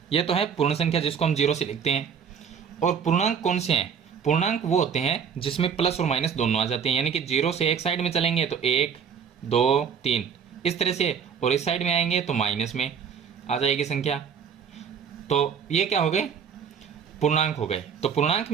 ये तो है पूर्ण संख्या जिसको हम 0 से लिखते हैं। और पूर्णांक कौन से हैं, पूर्णांक वो होते हैं जिसमें प्लस और माइनस दोनों आ जाते हैं, यानी कि 0 से एक साइड में चलेंगे तो 1, 2, 3 इस तरह से, और इस साइड में आएंगे तो माइनस में आ जाएगी संख्या। तो ये क्या हो गए, पूर्णांक हो गए। तो पूर्णांक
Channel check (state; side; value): quieter; left; 7.1 dB